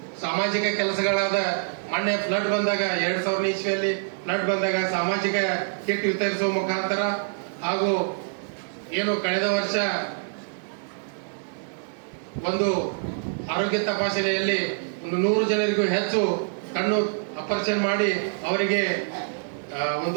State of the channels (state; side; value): silent; left; 58 dB below the other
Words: ಸಾಮಾಜಿಕ ಕೆಲಸಗಳಾದ ಮೊನ್ನೆ ಫ್ಲಡ್ ಬಂದಾಗ 2000 ಇಸ್ವಿಯಲ್ಲಿ ಫ್ಲಡ್ ಬಂದಾಗ ಸಾಮಾಜಿಕ ಕಿಟ್ ವಿತರಿಸುವ ಮುಖಾಂತರ ಹಾಗೂ ಏನು ಕಳೆದ ವರ್ಷ ಒಂದು ಆರೋಗ್ಯ ತಪಾಸಣೆಯಲ್ಲಿ 100 ಜನರಿಗೂ ಹೆಚ್ಚು ಕಣ್ಣು ಆಪರೇಷನ್ ಮಾಡಿ ಅವರಿಗೆ